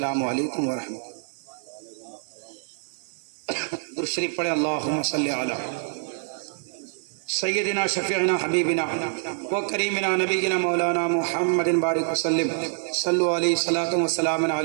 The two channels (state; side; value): silent; left; digital silence